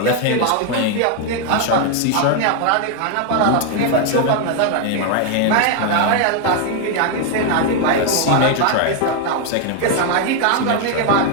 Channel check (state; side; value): different; both; correlation 0.00